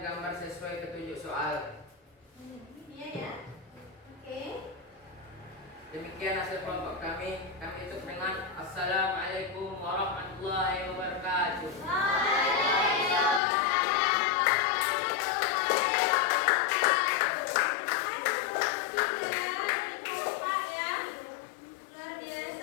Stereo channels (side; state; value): right; drops out; at 13.4 s